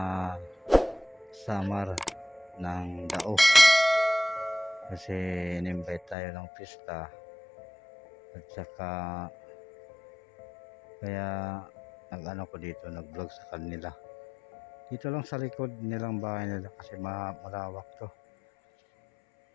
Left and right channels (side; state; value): right; drops out; at 6.2 s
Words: Samar ng Dao kasi in-invite tayo ng pista at saka kaya nag-ano ko dito, nag-vlog sa kanila dito lang sa likod nilang bahay nila kasi malawak to.